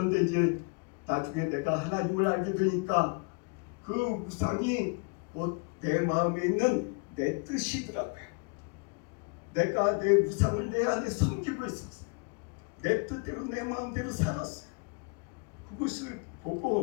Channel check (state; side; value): quieter; right; 33.2 dB